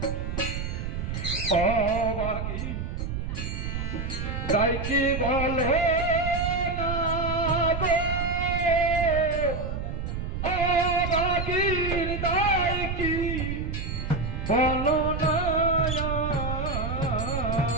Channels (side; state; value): right; noise; rumble, 4 dB below the sound